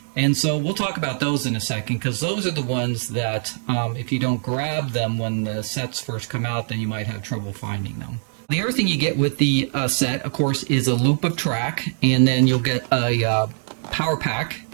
And so we'll talk about those in a second, because those are the ones that if you don't grab them when the sets first come out, then you might have trouble finding them. The other thing you get with the set, of course, is a loop of track, and then you'll get a power pack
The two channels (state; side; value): silent; left; digital silence